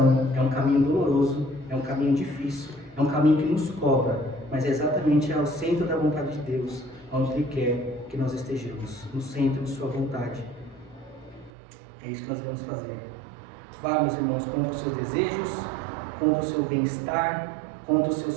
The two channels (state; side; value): drops out; left; at 11.5 s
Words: é um caminho doloroso, é um caminho difícil, é um caminho que nos cobra, mas é exatamente ao centro da vontade de Deus, onde Ele quer que nós estejamos, no centro de sua vontade. É isso que nós vamos fazer. Vá, meus irmãos, contra os seus desejos, contra o seu bem-estar, contra o seu